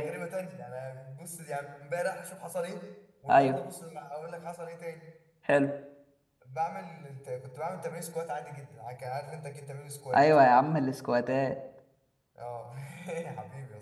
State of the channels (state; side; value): identical; both; correlation 1.00